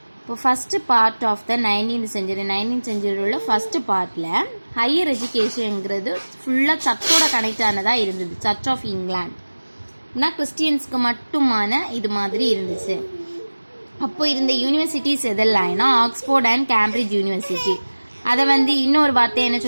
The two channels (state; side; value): inverted; both; correlation -1.00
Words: இப்போ first part of the 19th century உள்ள ஃபஸ்ட்டு பார்ட்டில் ஹையர் எஜுகேஷனுங்கிறது ஃபுல்லாக சர்ச்சோட கனெக்ட் ஆனதாக இருந்தது. சர்ச் ஆஃப் இங்கிலாண்ட்னா கிறிஸ்டியன்ஸ்க்கு மட்டுமான இது மாதிரி இருந்துச்சு. அப்போ இருந்த யூனிவர்சிட்டிஸ் எதெல்லாம்னா ஆக்ஸ்போர்ட் அண்ட் கேம்பிரிட்ஜ் யூனிவர்சிட்டி. அதை இன்னொரு வார்த்தை என்ன